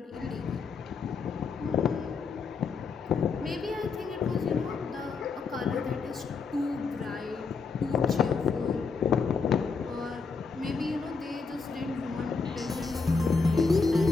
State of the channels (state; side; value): quieter; right; 4.8 dB